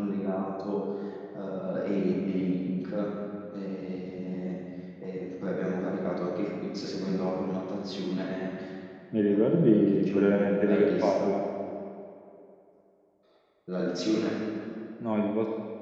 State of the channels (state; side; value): identical; both; correlation 1.00